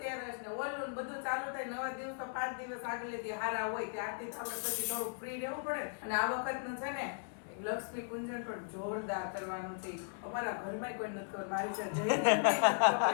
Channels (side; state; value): right; silent; 53 dB below the other